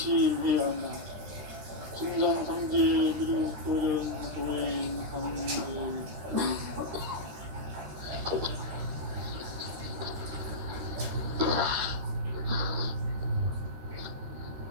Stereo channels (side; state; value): left; late; 13 ms